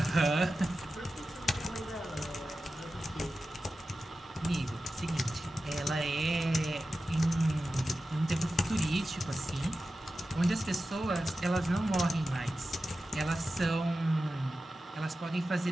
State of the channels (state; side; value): normal; both; correlation 0.93